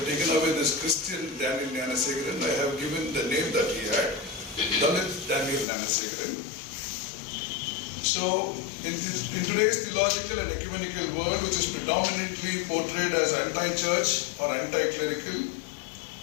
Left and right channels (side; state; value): right; drops out; at 5.7 s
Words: taken away this Christian Daniel GNANASEKARAN. I have given the name that he had, Dalit Daniel GNANASEKARAN. So, in today's theological and ecumenical world, which is predominantly portrayed as anti-church or anti-clerical,